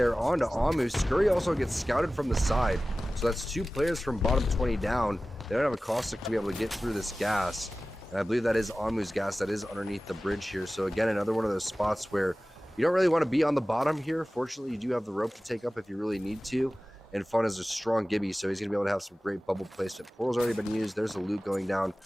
onto Amu. Scurry also gets scouted from the side, so that's 2 players from bottom 20 down. They don't have a caustic to be able to get through this gas, and I believe that is Amu's gas that is underneath the bridge here. So again, another one of those spots where you don't really want to be on the bottom here. Fortunately, you do have the rope to take up if you really need to. And Fun is a strong Gibby, so he's going to be able to have some great bubble placement. Portal's already been used. There's a loot going down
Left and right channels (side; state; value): both; normal; correlation 0.97